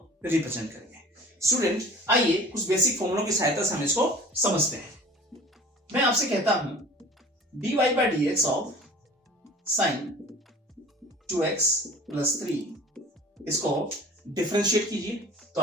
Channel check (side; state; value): both; normal; correlation 0.44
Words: रिप्रेजेंट करेंगे। स्टूडेंट, आइए कुछ बेसिक फॉर्मूलों की सहायता से हम इसको समझते हैं। मैं आपसे कहता हूं dy by dx of sin 2x plus 3, इसको डिफरेंशिएट कीजिए तो